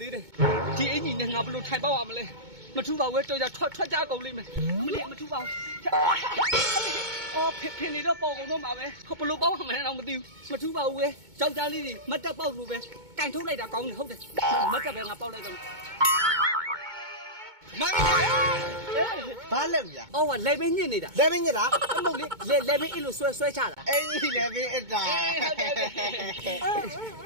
သေးတယ်ဒီအင်ကြီးနဲ့ငါဘလို့ထိုင်ပေါက်ရမလဲမထူပါဘူးတော်ကြထွက်ကြကုန်လိမ့်မယ်မလေးမထူပါဘူးအော်ဖင်နေတော့ပေါ်ကုန်တော့မှာပဲဘလို့ပေါက်ရမလဲတော့မသိဘူးမထူပါဘူးပဲကြောက်ကြလေးတွေမတက်ပေါက်လို့ပဲကင်ထုတ်လိုက်တာကောင်းတယ်ဟုတ်တယ်မတက်ပဲငါပေါက်လိုက်တော့မမဘာလဲဗျာအော်ကလေပင်းညစ်နေတာလေပင်းညစ်တာအမဟုတ်လေလေပင်းအဲ့လိုဆွဲချတာအင်းကြီးလေပင်းအတာ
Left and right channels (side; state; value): left; late; 2.2 ms